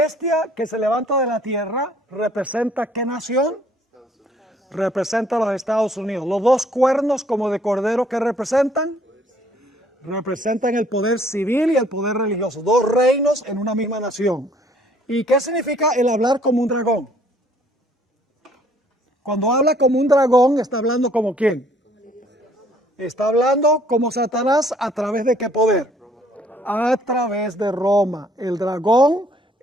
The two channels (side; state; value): both; normal; correlation 0.61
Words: que se levanta de la tierra representa ¿qué nación? Representa a los Estados Unidos. Los dos cuernos como de cordero, ¿qué representan? Representan el poder civil y el poder religioso. Dos reinos en una misma nación. ¿Y qué significa el hablar como un dragón? Cuando habla como un dragón, ¿está hablando como quién? Está hablando como Satanás, ¿a través de qué poder? A través de Roma. El dragón